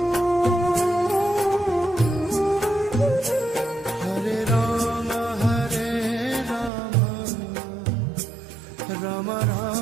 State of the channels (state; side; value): drops out; left; at 6.7 s